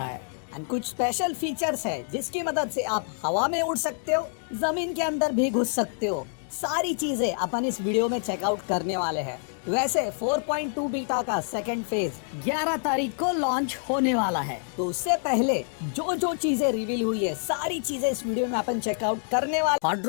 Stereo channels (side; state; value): right; silent; 60 dB below the other